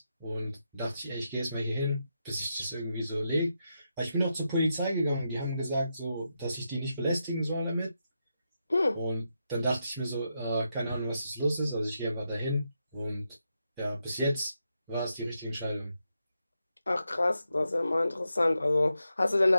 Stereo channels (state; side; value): inverted; both; correlation -0.85